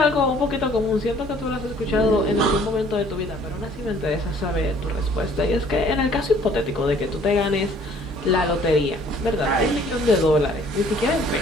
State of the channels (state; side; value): normal; both; correlation 0.57